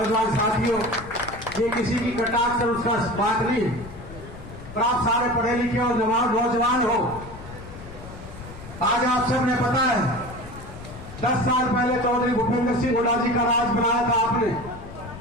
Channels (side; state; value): left; noise; rumble, 15 dB below the sound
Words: साथियों, ये किसी की कटाक्ष से उसका बात नहीं, पर आप सारे पढ़े लिखे और नौजवान हो। आज आप सबने पता है 10 साल पहले चौधरी भूपेंद्र सिंह हुड्डा जी का राज बनाया था आपने,